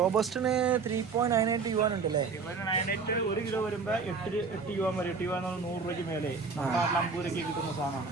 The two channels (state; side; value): quieter; left; 5.0 dB